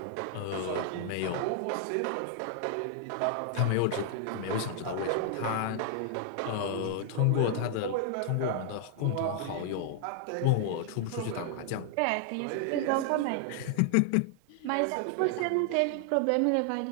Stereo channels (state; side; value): different; both; correlation 0.00